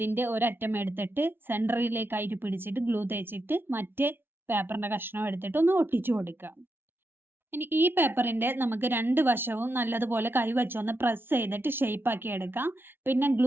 ഒരറ്റം എടുത്തിട്ട് സെന്ററിലേക്കായിട്ട് പിടിച്ചിട്ട് ഗ്ലൂ തേച്ചിട്ട് മറ്റേ പേപ്പറിന്റെ കഷ്ണം എടുത്തിട്ട് ഒന്ന് ഒട്ടിച്ചു കൊടുക്കുക. ഇനി ഈ പേപ്പറിന്റെ നമുക്ക് 2 വശവും നല്ലതുപോലെ കൈവച്ചൊന്ന് പ്രസ് ചെയ്തിട്ട് ഷേപ്പ് ആക്കി എടുക്കാം. പിന്നെ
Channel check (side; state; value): left; late; 0.11 ms